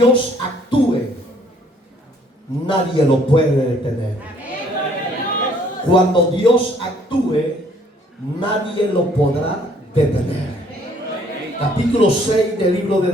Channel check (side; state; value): both; normal; correlation 0.62